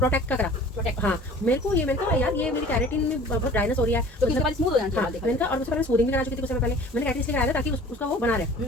का करा प्रोटेक्ट। हाँ मेरे को यार ये मेरी कैरेटिन में बहुत ड्राइनेस हो रही है, तो उसके बाद स्मूथ हो जाना चाहिए। मैंने कहा, और उससे पहले स्मूथिंग भी करा चुकी थी उससे पहले, मैंने कैरेटिन इसलिए कराया था ताकि उसका वो बना रहे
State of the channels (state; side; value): normal; both; correlation 0.47